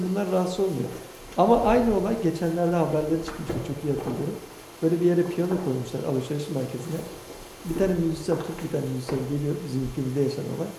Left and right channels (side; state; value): both; identical; correlation 1.00